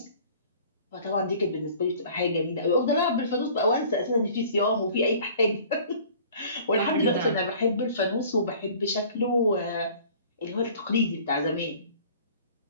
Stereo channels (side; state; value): both; inverted; correlation -0.49